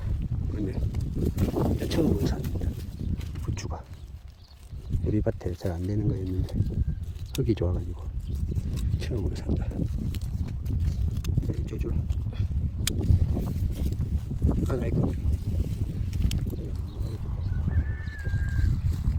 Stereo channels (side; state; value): both; identical; correlation 1.00